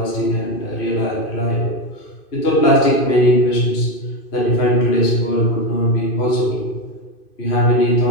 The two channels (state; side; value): late; right; 2.5 ms